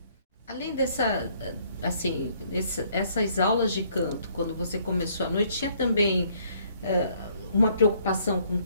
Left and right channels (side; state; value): both; inverted; correlation -0.64